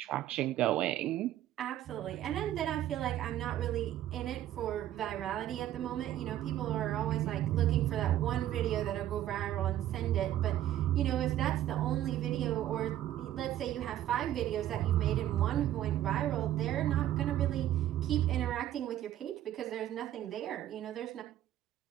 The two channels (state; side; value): quieter; left; 12.6 dB